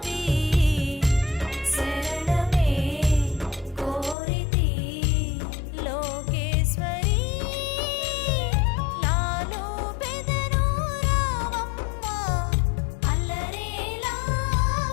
శరణమే కోరితి లోకేశ్వరి లాలు పెదను రావమ్మ అల్లరేలా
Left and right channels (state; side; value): drops out; right; at 4.2 s